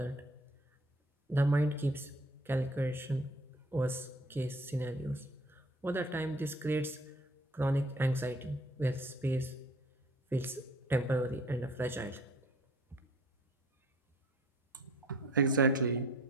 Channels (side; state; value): both; normal; correlation 0.53